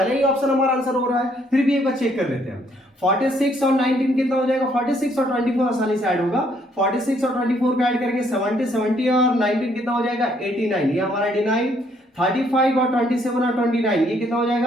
ही ऑप्शन हमारा आंसर हो रहा है। फिर भी एक बार चेक कर लेते हैं। 46 और 19 कितना हो जाएगा? 46 और 24 आसानी से ऐड होगा। 46 और 24 को ऐड करेंगे 70 और 19 कितना हो जाएगा? 89। ये हमारा 89। 35 और 27 और 29 ये कितना हो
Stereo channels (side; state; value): both; normal; correlation 0.68